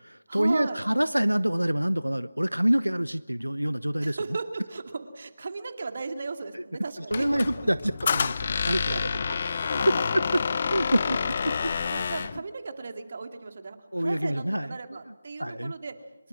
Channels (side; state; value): both; inverted; correlation -0.94